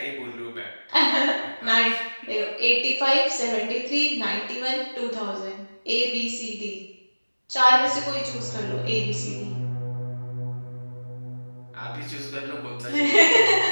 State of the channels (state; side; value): inverted; both; correlation -1.00